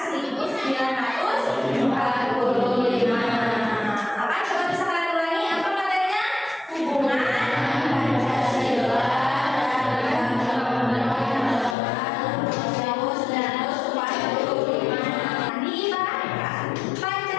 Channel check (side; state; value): right; drops out; at 11.8 s